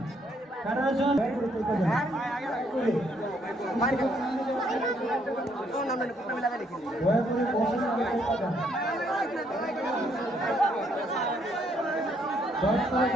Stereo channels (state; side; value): normal; both; correlation 0.70